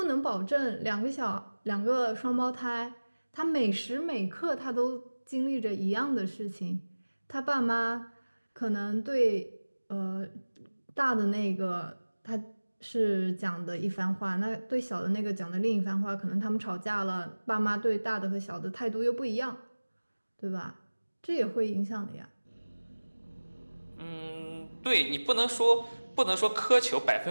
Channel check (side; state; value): both; inverted; correlation -1.00